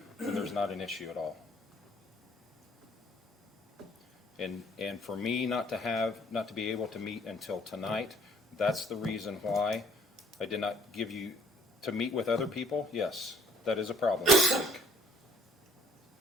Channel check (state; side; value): normal; both; correlation 0.58